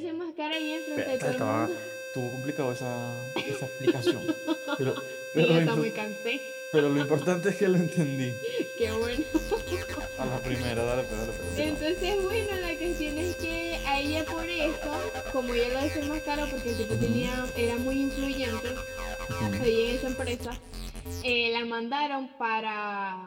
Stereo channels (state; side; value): identical; both; correlation 1.00